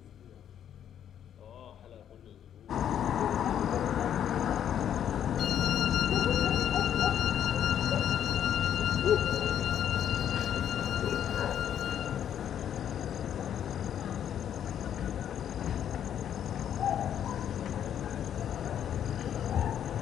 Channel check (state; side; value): quieter; right; 9.7 dB